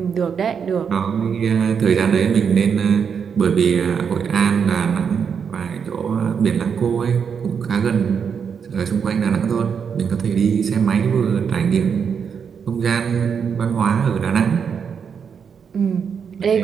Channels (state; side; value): quieter; left; 6.8 dB